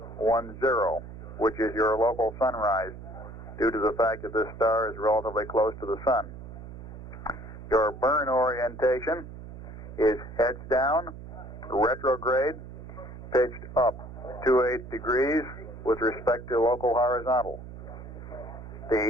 which is your local sunrise, due to the fact that this star is relatively close to the sun. Your burn orientation is heads down, retrograde, pitched up 28 degrees with respect to local horizontal.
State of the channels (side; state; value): right; noise; hum, 13 dB below the sound